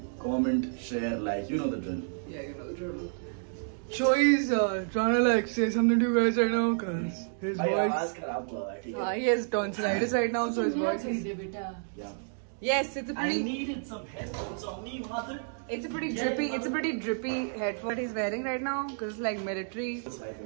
comment, share, like. You know the drill. Yeah, you know the drill. Shoy's trying to like say something to you guys right now because his voice. He has tonsillitis right now, so his voice is. Yeah. Yes, it's a pretty. I needed some headphones on me, mother. It's a pretty drippy headphone that he's wearing right now because it's like military. It's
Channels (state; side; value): silent; left; digital silence